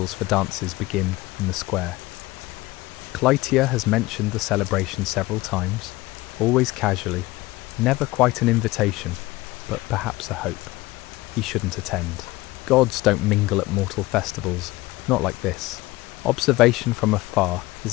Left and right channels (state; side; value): quieter; right; 19.7 dB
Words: for dances begin in the square. Cleitia has mentioned the celebration several times, always casually, never quite an invitation, but perhaps a hope. He shouldn't attend. Gods don't mingle at mortal festivals, not like this. Observation from afar